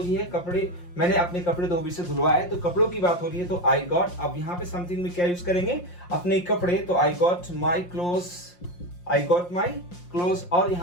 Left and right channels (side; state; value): right; late; 5.7 ms